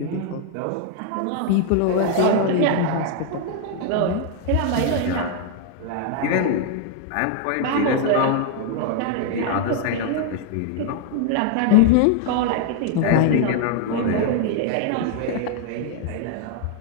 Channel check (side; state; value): both; different; correlation 0.00